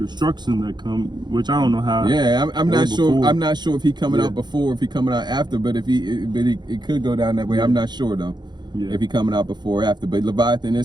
that come, which I don't know how. Yeah, I'm not sure. Before. I'm not sure if he coming out before, if he coming out after. But if it could go down that way. I'm not sure though. Yeah. If he coming out before or after. But Leviathan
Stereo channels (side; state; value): left; late; 0.21 ms